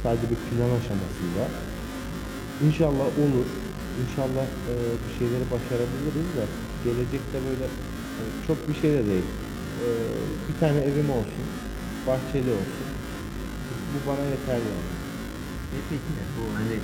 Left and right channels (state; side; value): identical; both; correlation 1.00